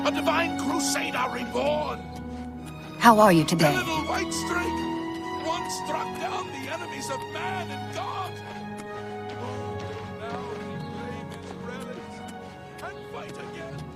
a divine crusader reborn. How are you A today? little white streak once struck down the enemies of man and God. Oh, now we claim his relics and fight again.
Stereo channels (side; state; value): both; identical; correlation 1.00